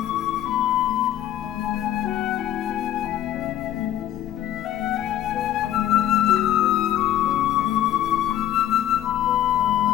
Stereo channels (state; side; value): quieter; right; 12.1 dB